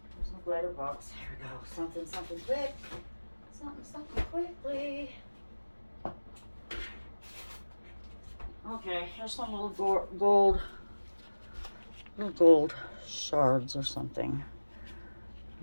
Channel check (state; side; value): inverted; both; correlation -1.00